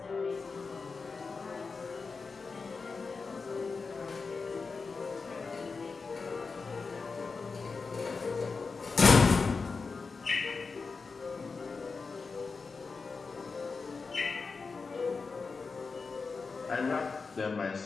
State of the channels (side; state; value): right; quieter; 4.6 dB